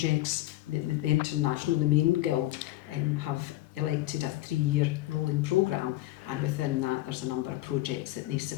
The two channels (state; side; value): quieter; right; 17.0 dB